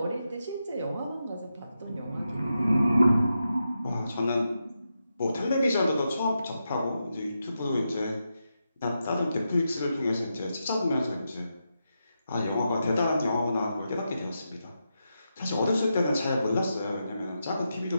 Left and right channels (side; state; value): both; inverted; correlation -0.87